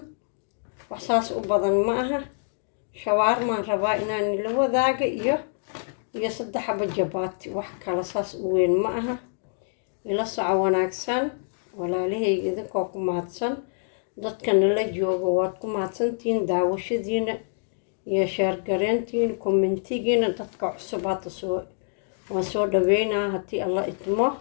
wax saas u badan ma aha shawarma rabaa inaan ila wadaago iyo 3 xabo jabaati wax kala saas u weyn ma aha ila soco wanaagsan walaalahayga idinkoo ku mahadsan dadka nala jooga waad ku mahadsantiin daawashadiina iyo share gareyntiin commentigiina dadka cusub hadda waan soo dhaweynaa haddii Allah idmo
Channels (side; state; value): right; silent; digital silence